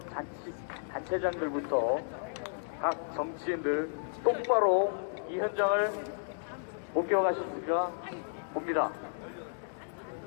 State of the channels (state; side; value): silent; right; digital silence